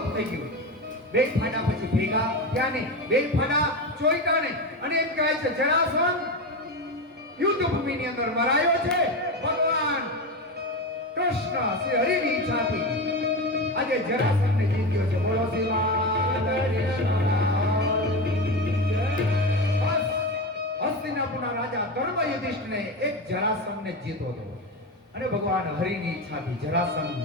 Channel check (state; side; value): normal; both; correlation 0.20